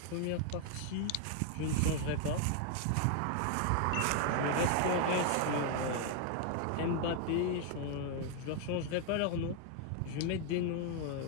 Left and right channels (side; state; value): both; different; correlation 0.00